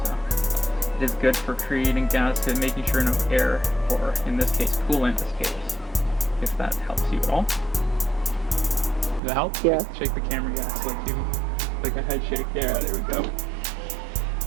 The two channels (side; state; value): left; drops out; at 9.2 s